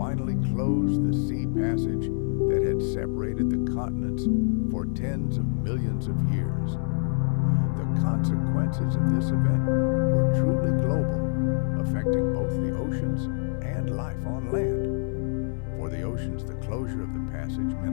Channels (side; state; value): right; silent; 61 dB below the other